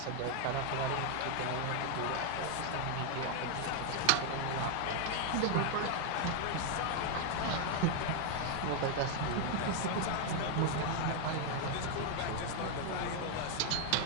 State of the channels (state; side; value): different; both; correlation 0.00